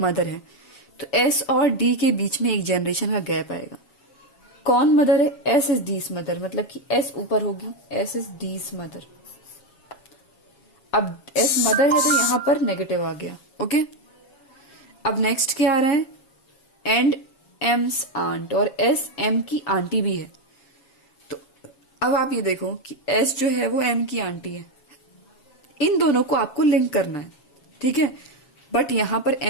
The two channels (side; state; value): right; late; 7.3 ms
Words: है, तो एस और डी के बीच में एक जनरेशन का गैप आएगा। कौन मदर है, एस इज डीज मदर, मतलब कि एस ऊपर होगी, एस इज डीज मदर। अब एस मदर है तो यहां पर नेगेटिव आ गया, ओके। अब नेक्स्ट क्या आ रहा है, एंड एम्स आंट, और एस एम की आंटी भी है। तो अब आप ये देखो कि एस जो है वो एम की आंटी है, इन दोनों को आपको लिंक करना है, ठीक है। बट यहां पर